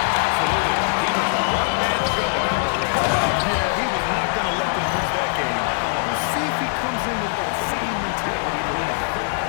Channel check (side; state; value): right; silent; digital silence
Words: Absolutely. He was a one-man show. Yeah, he was not going to let them lose that game. We'll see if he comes in with that same mentality to win.